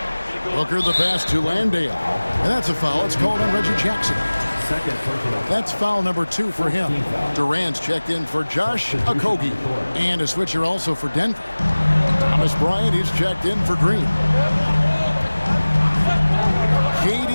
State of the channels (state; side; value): inverted; both; correlation -1.00